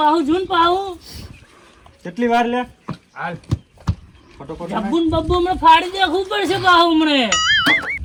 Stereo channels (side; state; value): both; identical; correlation 1.00